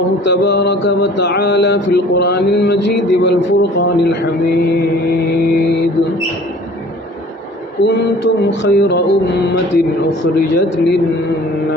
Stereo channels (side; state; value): both; normal; correlation 0.49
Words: تبارك وتعالى في القرآن المجيد والفرقان الحميد كنتم خير أمة أخرجت